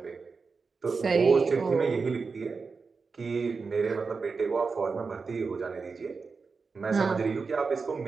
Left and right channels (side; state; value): left; quieter; 4.7 dB